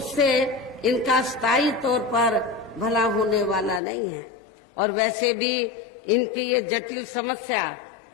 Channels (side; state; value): right; drops out; at 3.8 s